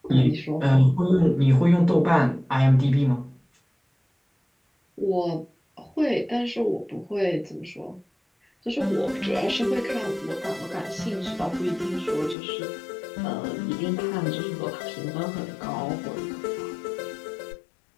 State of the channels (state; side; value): drops out; right; at 12.4 s